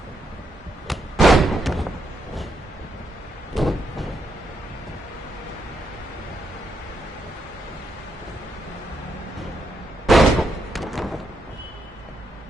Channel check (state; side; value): normal; both; correlation 0.79